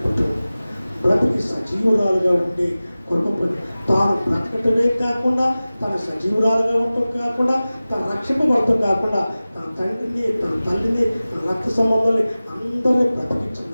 కుటుంబం. బ్రతికి సజీవురాలుగా ఉండే కుటుంబం. తాను బ్రతకటమే కాకుండా తన సజీవురాలుగా ఉండటం కాకుండా తన రక్షింపబడటం కాకుండా తన తండ్రిని, తన తల్లిని, తన రక్త సంబంధాన్ని అందరినీ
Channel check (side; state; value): both; inverted; correlation -0.97